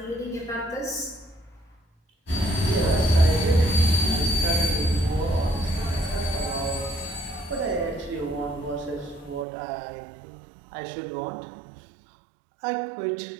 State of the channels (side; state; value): left; drops out; at 9.5 s